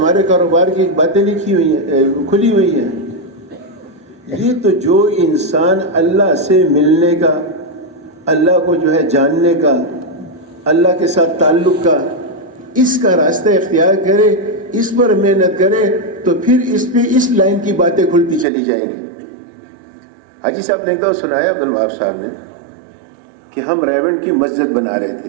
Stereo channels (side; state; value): left; drops out; at 18.4 s